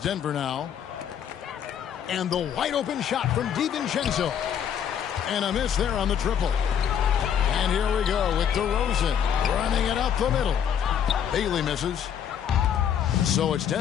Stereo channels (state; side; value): quieter; right; 8.7 dB